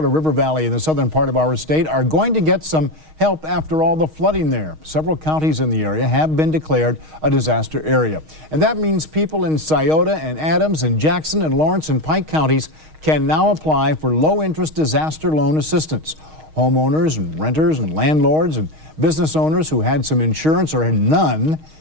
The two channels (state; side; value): late; left; 6.4 ms